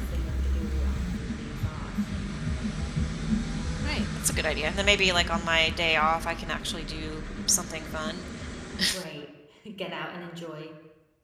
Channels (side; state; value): both; identical; correlation 1.00